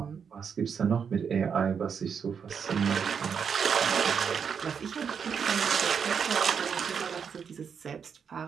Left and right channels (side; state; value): left; quieter; 6.8 dB